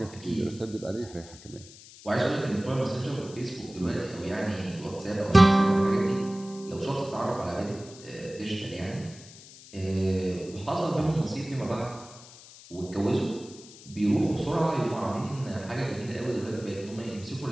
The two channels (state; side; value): noise; left; hiss, 19 dB below the sound